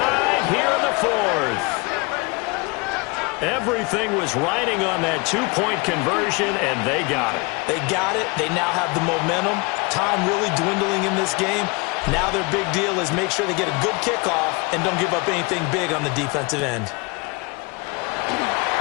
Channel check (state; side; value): quieter; right; 28.0 dB